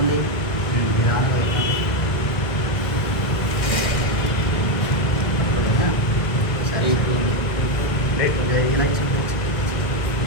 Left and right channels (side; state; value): right; late; 1.8 ms